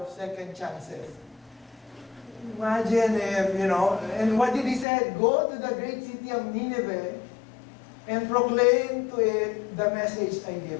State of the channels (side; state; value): right; drops out; at 4.9 s